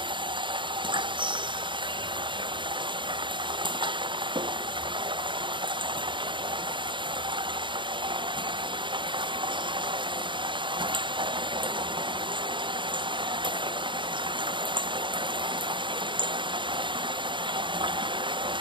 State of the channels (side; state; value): left; late; 0.23 ms